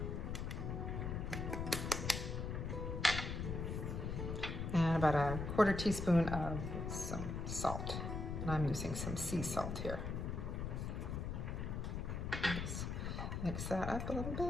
And about a 1/4 teaspoon of some salt. And I'm using some sea salt here. Just mix that up a little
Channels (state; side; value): noise; left; rumble, 3 dB below the sound